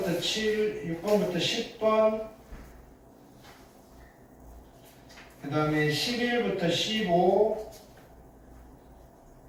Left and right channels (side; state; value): both; identical; correlation 1.00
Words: 7, 6번부터 10번, 그 다음에 11부터 15,